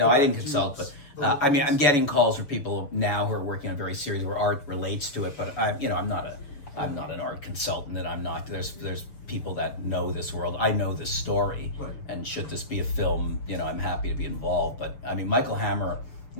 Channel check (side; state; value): right; late; 6.9 ms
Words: I didn't consult, but I mean, I'm getting calls from people now who are working on very serious where art relates to it, but I'm not an art consultant, and there's people that know this world. I know this story, right. And should this be a film, I'm happy to be involved. But I mean, Michael Hammer,